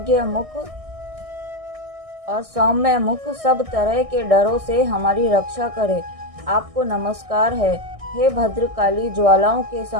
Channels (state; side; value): late; left; 1.6 ms